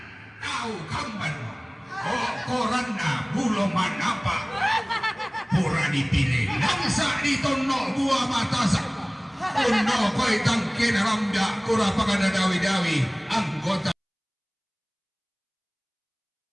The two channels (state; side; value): identical; both; correlation 1.00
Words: Tao kamban mo. O koran na bulong manapa. Pura dipilih. Langsa dito no buah matasak. Uno ko'y tangkin rambya. Kura pa ka na dawi-dawi. Anggota.